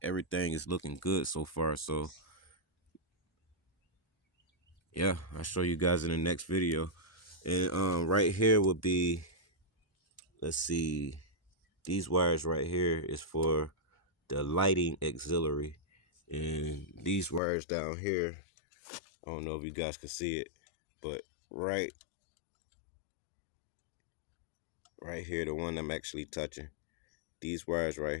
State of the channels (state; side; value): drops out; right; at 17.4 s